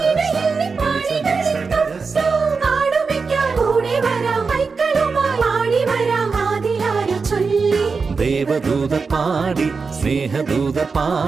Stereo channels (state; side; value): quieter; left; 4.8 dB